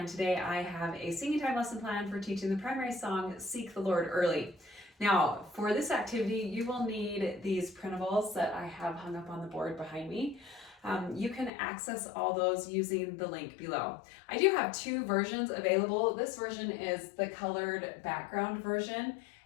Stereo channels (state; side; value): drops out; right; at 11.5 s